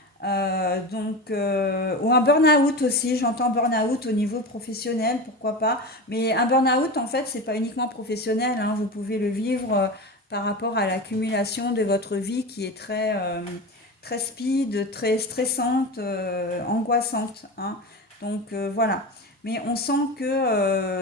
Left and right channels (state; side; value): normal; both; correlation 0.25